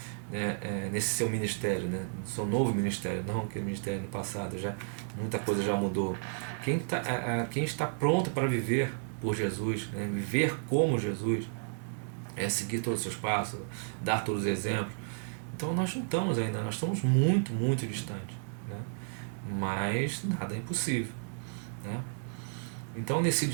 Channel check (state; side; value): silent; left; 56 dB below the other